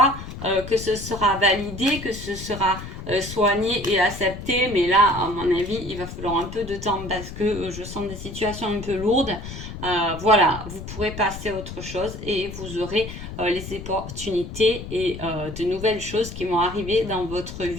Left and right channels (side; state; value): left; noise; rumble, 10 dB below the sound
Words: que ce sera validé, que ce sera soigné et accepté, mais là, à mon avis, il va falloir un peu de temps parce que je sens des situations un peu lourdes. Voilà, vous pourrez passer à autre chose et vous aurez les opportunités et de nouvelles choses qui vont arriver dans votre